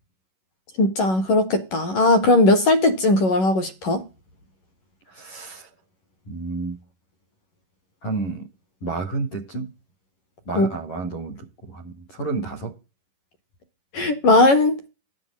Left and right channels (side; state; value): right; late; 11 ms